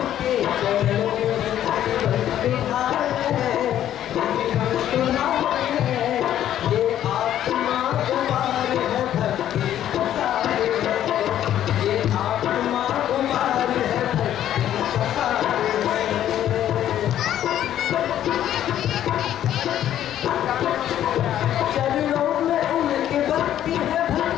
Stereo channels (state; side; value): quieter; right; 11.4 dB